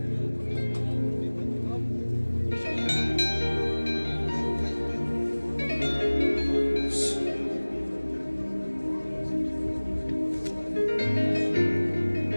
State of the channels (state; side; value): inverted; both; correlation -1.00